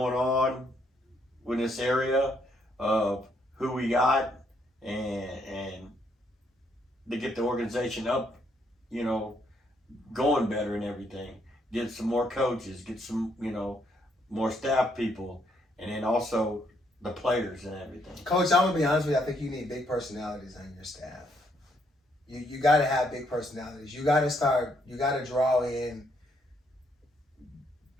on with this area, of who we got, and to get the organization up, going better and everything. Get some more coaches, get some, more staff people, and then also the players and everything. Coach, I'm gonna be honest with you. I think you need big personalities on your staff. You got to have big personalities. You got to draw in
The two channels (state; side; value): normal; both; correlation 0.72